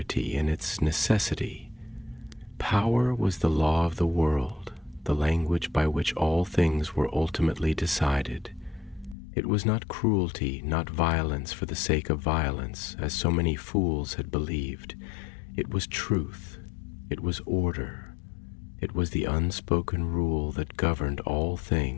in its necessity. Power was the law of the world, the language by which all things were ultimately decided. It was not cruelty, not violence for the sake of violence, as so many fools had believed. It was truth. It was order. It was the unspoken rule that governed all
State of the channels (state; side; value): drops out; right; at 9.2 s